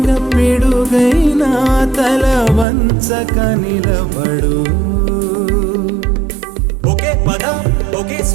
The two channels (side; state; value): left; drops out; at 2.7 s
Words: పిడుగైనా తల వంచక నిలబడు. ఒకే పదం ఒకే